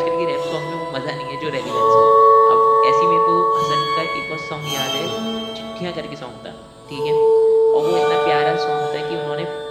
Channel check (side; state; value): both; identical; correlation 1.00